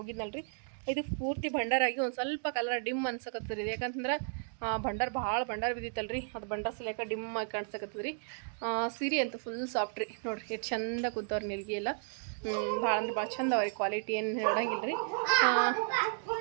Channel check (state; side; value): silent; left; 55 dB below the other